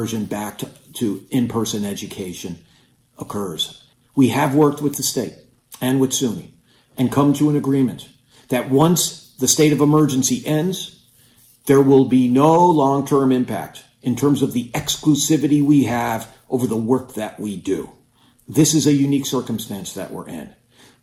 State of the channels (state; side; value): identical; both; correlation 1.00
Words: back to in-person education occurs. We have worked with the state and with SUNY and come to an agreement that once the state of emergency ends, there will be no long-term impact in terms of the exclusivity we have over the work that we do. This is a unique circumstance that we're in.